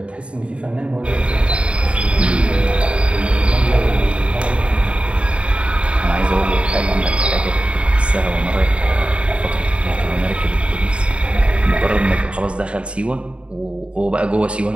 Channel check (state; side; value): late; left; 0.059 ms